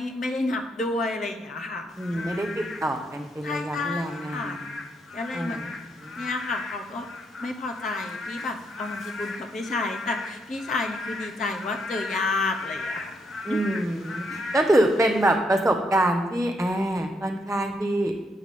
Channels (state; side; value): normal; both; correlation 0.77